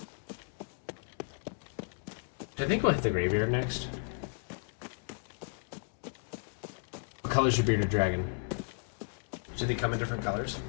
think we'll hit the graveyard next. What color's your bearded dragon? Do they come in different colors?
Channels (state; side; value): silent; right; 55 dB below the other